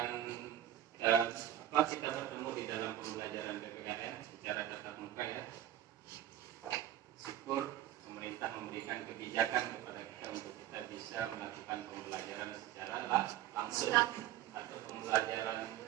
kita bertemu di dalam pembelajaran PPKN secara tatap muka ya. Syukur pemerintah memberikan kebijakan kepada kita untuk kita bisa melakukan pembelajaran secara langsung atau pembelajaran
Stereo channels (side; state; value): left; quieter; 12.3 dB